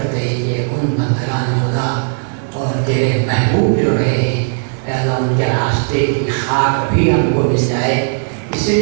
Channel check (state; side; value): silent; left; digital silence